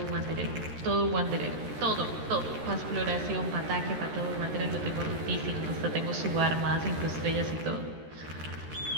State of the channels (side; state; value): left; late; 13 ms